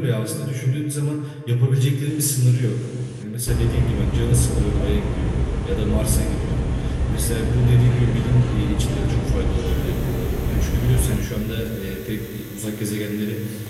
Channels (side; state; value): both; identical; correlation 1.00